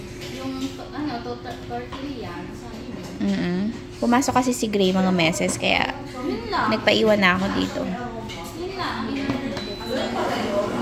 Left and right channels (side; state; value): both; identical; correlation 1.00